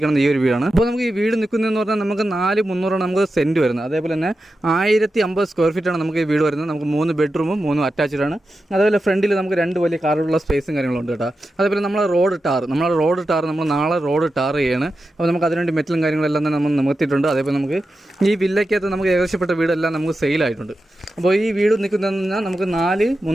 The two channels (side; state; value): both; normal; correlation 0.91